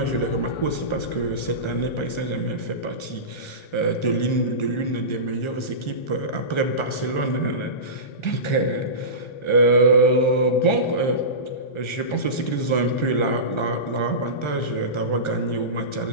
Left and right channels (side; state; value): right; late; 1.4 ms